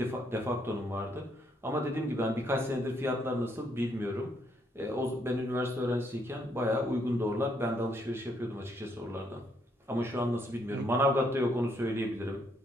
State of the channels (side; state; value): both; normal; correlation 0.72